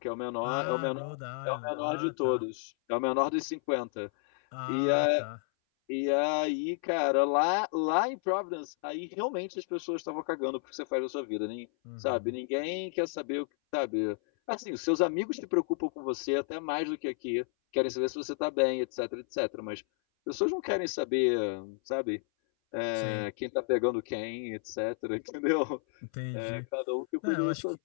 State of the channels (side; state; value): right; silent; 57 dB below the other